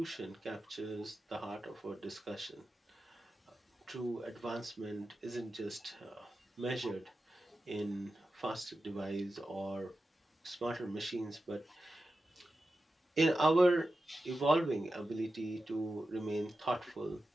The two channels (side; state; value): both; normal; correlation 0.92